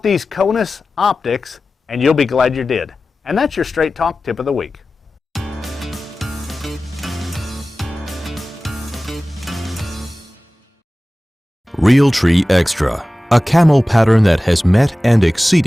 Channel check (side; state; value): both; normal; correlation 0.96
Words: these Conus optics and you'll be glad you did. And that's your Straight Talk Tip of the Week. Realtree Extra, a camo pattern that has met and